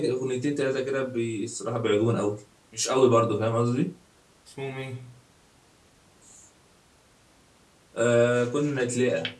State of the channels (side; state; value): both; identical; correlation 1.00